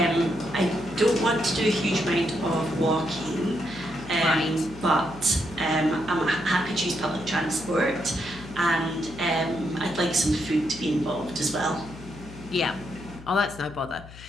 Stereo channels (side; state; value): left; noise; hum, 17 dB below the sound